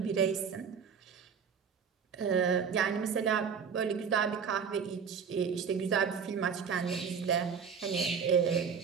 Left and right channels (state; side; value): quieter; left; 6.6 dB